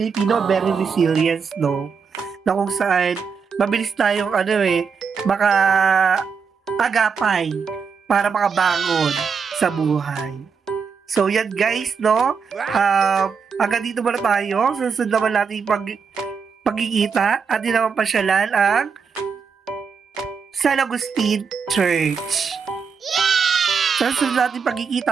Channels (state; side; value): quieter; left; 5.9 dB